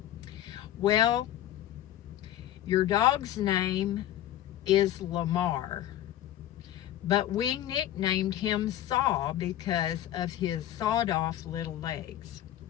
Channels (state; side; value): quieter; right; 12.5 dB